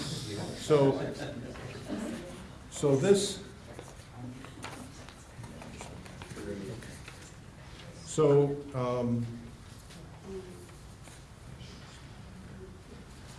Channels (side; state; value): both; identical; correlation 1.00